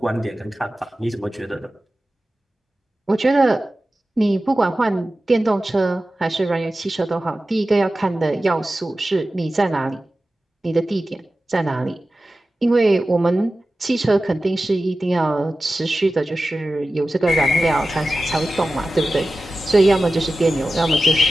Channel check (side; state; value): both; normal; correlation 0.94